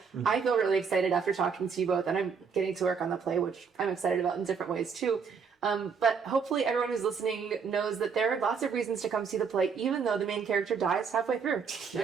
I feel really excited after talking to you both, and I'm getting to work on the play, which I'm excited about in different ways too. But hopefully everyone who's listening knows that there are lots of reasons to come see the play, even though the main character dies halfway through.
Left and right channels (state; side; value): quieter; left; 6.0 dB